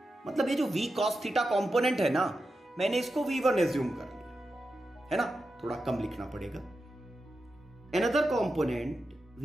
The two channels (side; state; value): both; normal; correlation 0.89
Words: मतलब ये जो v cos थीटा कॉम्पोनेंट है ना, मैंने इसको v1 एज्यूम कर लिया है ना, थोड़ा कम लिखना पड़ेगा। Another component